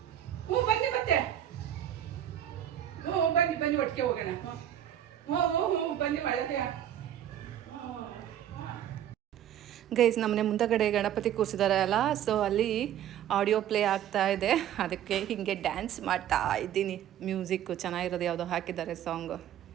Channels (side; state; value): left; quieter; 10.9 dB